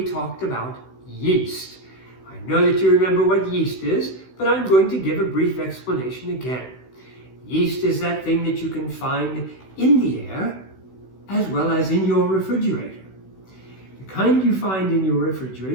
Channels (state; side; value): late; right; 16 ms